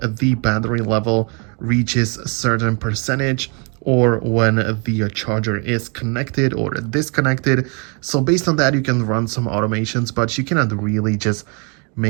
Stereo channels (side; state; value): left; quieter; 34.6 dB